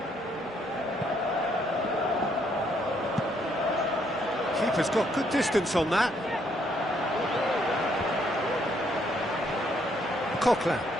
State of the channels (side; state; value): both; normal; correlation 0.71